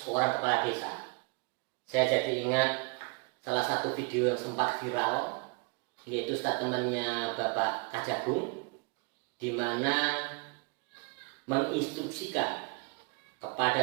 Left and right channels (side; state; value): left; quieter; 31.9 dB